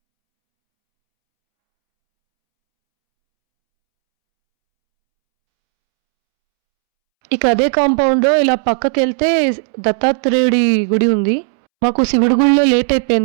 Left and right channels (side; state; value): left; silent; 71 dB below the other